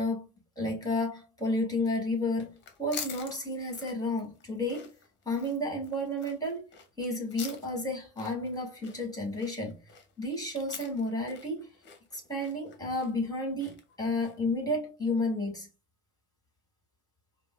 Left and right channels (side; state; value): both; normal; correlation 0.31